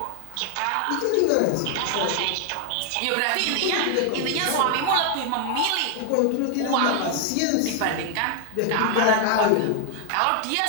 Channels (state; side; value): different; both; correlation 0.00